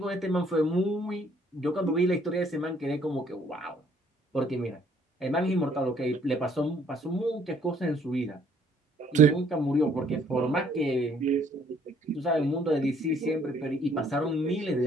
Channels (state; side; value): normal; both; correlation 0.63